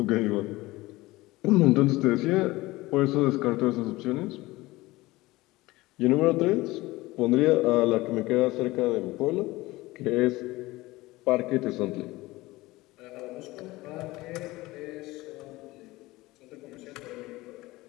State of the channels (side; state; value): right; quieter; 19.6 dB